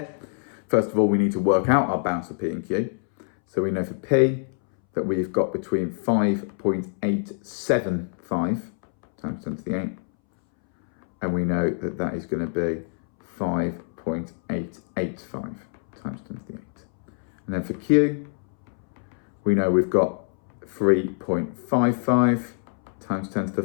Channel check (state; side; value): silent; right; 62 dB below the other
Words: first of all, we need to work out our bounds for P and Q. So we know for P that we've got between 5.875 times 10 to the 8, and we know that that is going to be 5.885 times 10 to the 8. And then for Q, we know we've got 3.55 times 10 to the